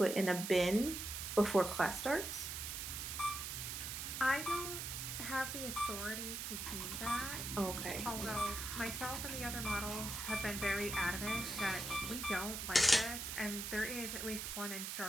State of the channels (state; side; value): noise; right; hiss, 4 dB below the sound